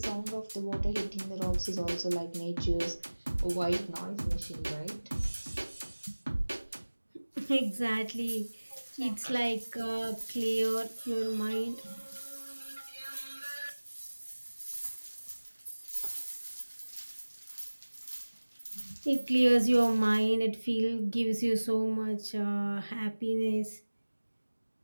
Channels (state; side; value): inverted; both; correlation -1.00